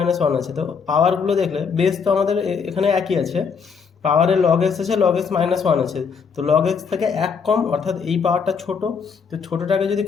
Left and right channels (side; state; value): right; quieter; 6.0 dB